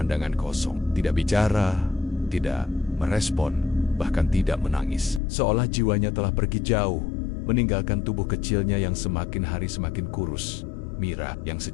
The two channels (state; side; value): drops out; right; at 5.2 s